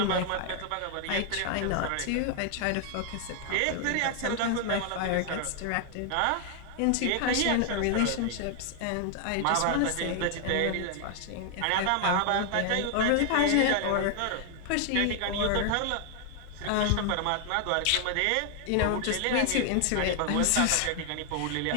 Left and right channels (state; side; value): different; both; correlation 0.00